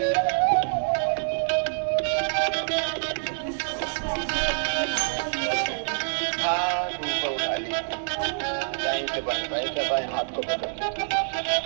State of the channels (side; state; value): left; silent; 61 dB below the other